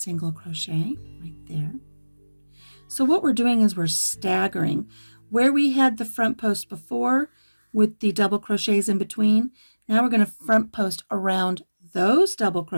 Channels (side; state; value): both; inverted; correlation -1.00